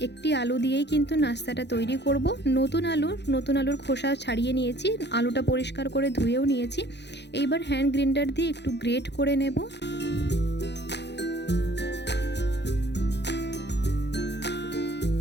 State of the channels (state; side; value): late; right; 0.50 ms